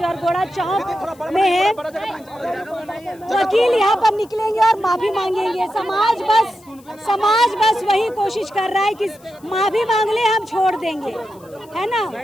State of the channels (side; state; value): left; noise; hiss, 28 dB below the sound